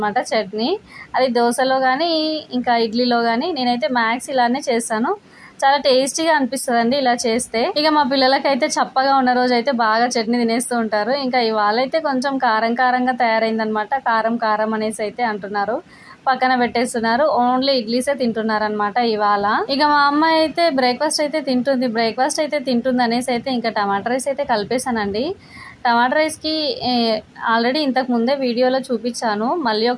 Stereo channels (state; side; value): identical; both; correlation 1.00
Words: చట్నీ. అది దోశలో కానీ ఇంకా ఇడ్లీలో కానీ నేనైతే మ్యాక్స్ ఇలానే చేస్తాను. చాలా టేస్టీగా అనిపిస్తుంది అండి ఇలా చేస్తే. ఇక మా పిల్లలకైతే చప్పగా ఉన్న రోజు అయితే బాగా చట్నీ తినేస్తూ ఉంటారు. ఇంకా ఇవాళ అయితే కొంచెం కారంగా తయారైందనమాట. కారం అనేసి అయితే అంటున్నారు. పక్కన పెట్టేస్తున్నారు. ఓన్లీ ఇడ్లీసే తింటున్నారనమాట ఇవాళ. ఇక మా అమ్మాయి అయితే బ్రేక్ఫాస్ట్ అయితే తింటుంది అనేసి అయితే ఇంకా టమాటా రైస్ అయితే కలిపేశానండి. టమాటా రైస్కి ఆల్రెడీ ఇంతకు ముందే వీడియోలో చూపించాను. మళ్ళీ